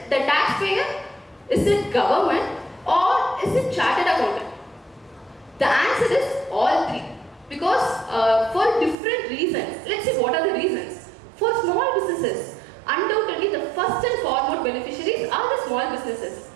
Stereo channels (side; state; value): left; drops out; at 9.0 s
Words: the taxpayer? Is it government? Or is it chartered accountant? The answer is all three. Because for different reasons, let's see what are the reasons. For small businesses, undoubtedly the first and foremost beneficiaries are the small businesses.